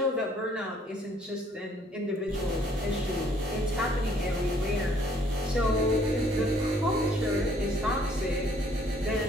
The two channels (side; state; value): both; normal; correlation 0.62